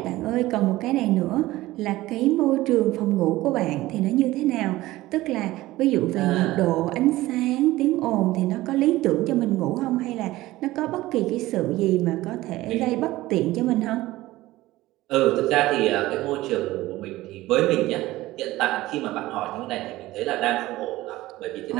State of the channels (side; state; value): left; quieter; 17.4 dB